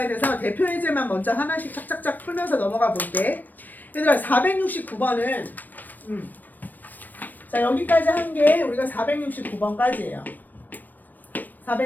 돼서 대표 예제만 먼저 하나씩 착착착 풀면서 넘어가 볼게. 얘들아 469번은 자 여기까지 한 게 우리가 469번까지예요.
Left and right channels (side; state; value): right; late; 0.088 ms